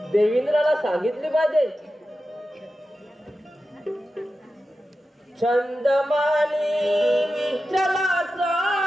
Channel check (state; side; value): normal; both; correlation 0.92